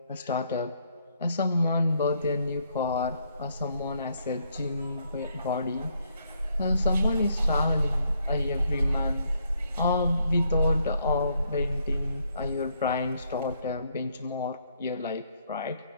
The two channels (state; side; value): inverted; both; correlation -0.72